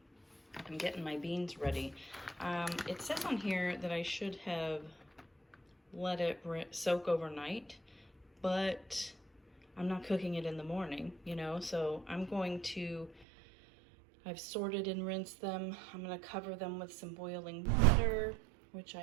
I'm getting my beans ready. It says on here that I should have let it soak overnight, but I'm not cooking it in the morning, so I've sorted and rinsed them. I'm gonna cover them with some boiling water, which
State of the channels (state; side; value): drops out; left; at 13.2 s